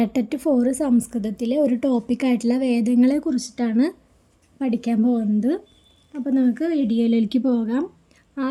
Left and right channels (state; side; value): identical; both; correlation 1.00